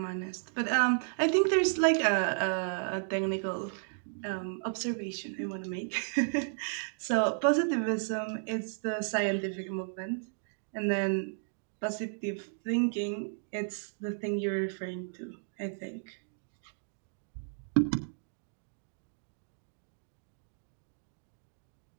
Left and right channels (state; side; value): silent; left; digital silence